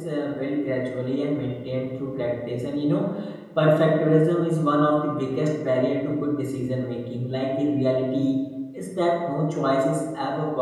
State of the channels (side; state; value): both; identical; correlation 1.00